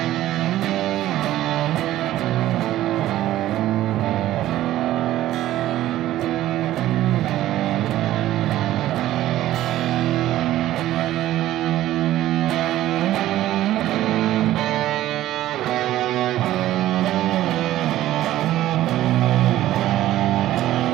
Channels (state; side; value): quieter; left; 14.2 dB